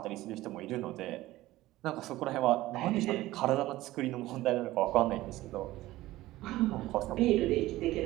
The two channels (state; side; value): quieter; left; 16.8 dB